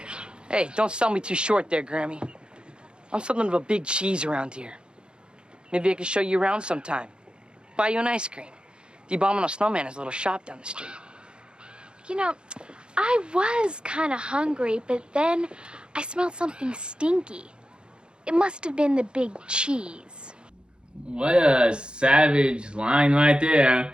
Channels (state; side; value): late; left; 0.052 ms